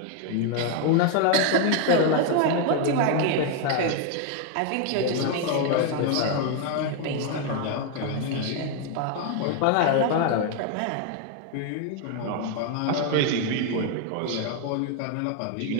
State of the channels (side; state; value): both; different; correlation 0.01